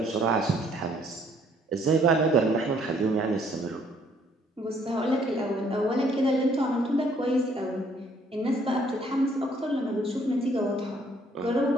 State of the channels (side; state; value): both; normal; correlation 0.64